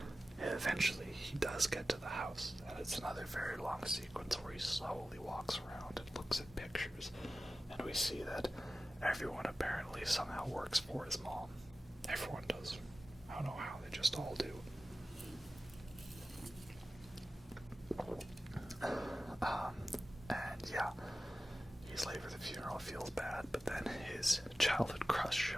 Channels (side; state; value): both; normal; correlation 0.95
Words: Eventually, he does get to the house, and it's another very long sequence where he slowly walks around and looks at pictures, and we see that everyone apparently somehow works for his mom. Everyone does. I don't know how, they just all do. And yeah, he's late for the funeral, feels bad, but then his childhood crush